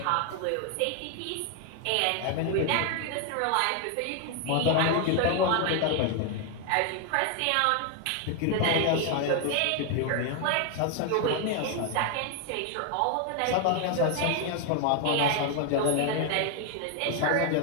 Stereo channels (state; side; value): different; both; correlation 0.00